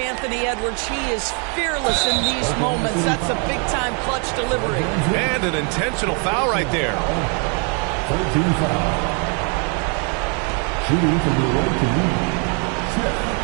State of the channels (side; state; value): left; quieter; 37.3 dB